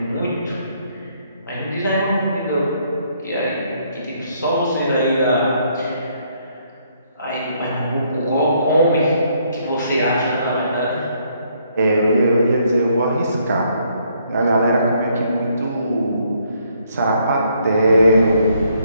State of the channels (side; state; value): both; inverted; correlation -0.70